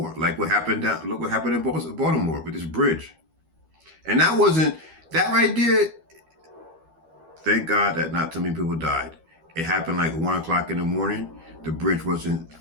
like what happened down, look what happened in Baltimore with this bridge. And that wasn't, that right there, thank God that not too many people died. It happened like 1 o'clock in the morning. The bridge wasn't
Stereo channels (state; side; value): late; left; 12 ms